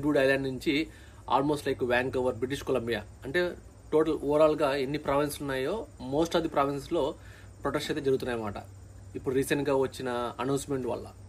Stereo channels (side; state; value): both; identical; correlation 1.00